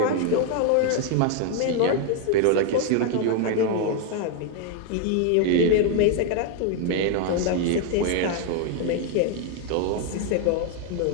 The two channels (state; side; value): different; both; correlation 0.00